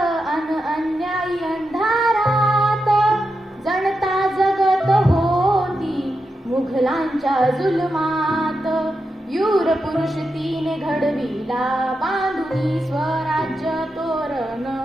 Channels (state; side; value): normal; both; correlation 0.87